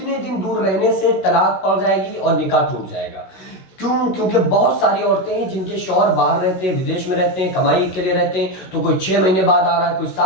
دن دور رہنے سے طلاق پڑ جائے گی اور نکاح ٹوٹ جائے گا؟ کیونکہ بہت ساری عورتیں ہیں جن کے شوہر باہر رہتے ہیں، ودیش میں رہتے ہیں، کمائی کے لیے رہتے ہیں، تو کوئی 6 مہینے بعد آ رہا ہے، کوئی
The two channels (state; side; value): late; right; 16 ms